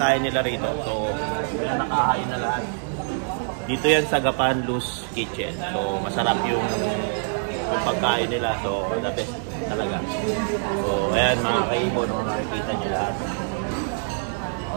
nila rito. So yan nakahain na lahat. Dito yan sa Gapan Luz Kitchen. So masarap yung pagkain nila. So the best talaga. So ayan mga kaibon, makikita nyo lahat.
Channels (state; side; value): silent; left; 62 dB below the other